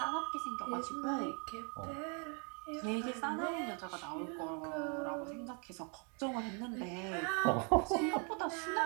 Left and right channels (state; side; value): quieter; left; 36.6 dB